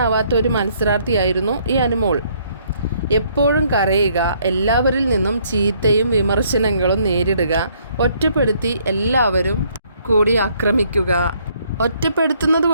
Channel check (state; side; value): inverted; both; correlation -0.66